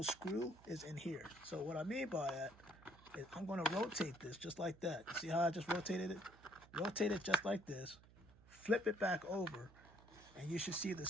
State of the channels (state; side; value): noise; right; hum, 23 dB below the sound